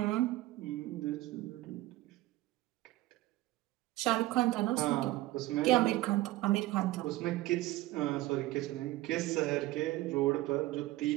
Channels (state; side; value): quieter; left; 17.3 dB